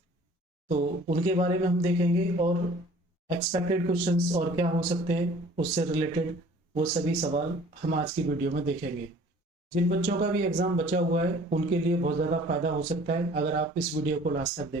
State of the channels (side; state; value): both; normal; correlation 0.51